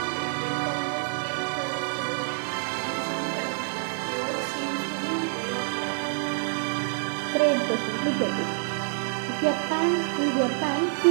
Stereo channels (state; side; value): silent; left; 60 dB below the other